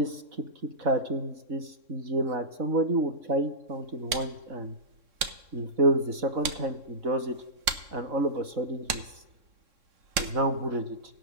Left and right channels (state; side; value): late; left; 3.6 ms